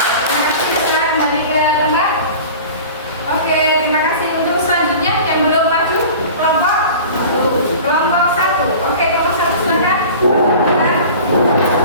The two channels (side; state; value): both; inverted; correlation -0.39